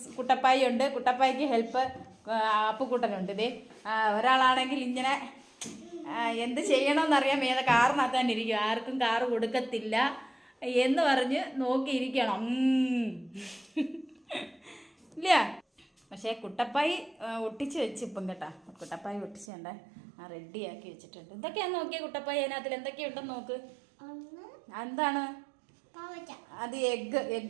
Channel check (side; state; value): left; drops out; at 19.5 s